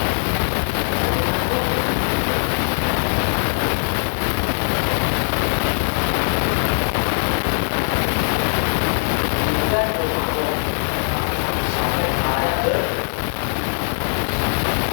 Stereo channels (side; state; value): right; silent; digital silence